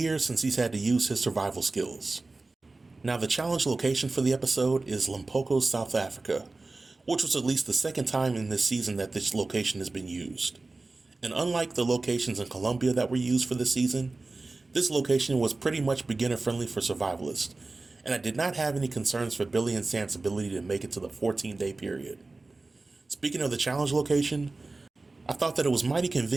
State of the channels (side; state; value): left; quieter; 3.4 dB